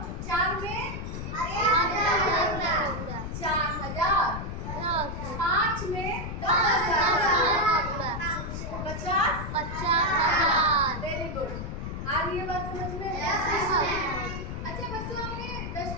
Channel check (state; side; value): noise; left; rumble, 6 dB below the sound